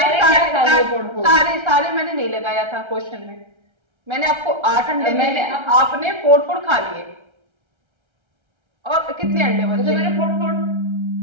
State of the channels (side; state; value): left; late; 1.3 ms